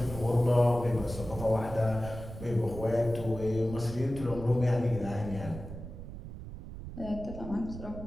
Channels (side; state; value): right; noise; rumble, 11 dB below the sound